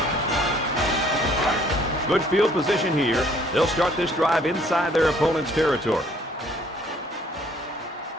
Good field position here. They'll start this drive inside their opponent's territory.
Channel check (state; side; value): normal; both; correlation 0.60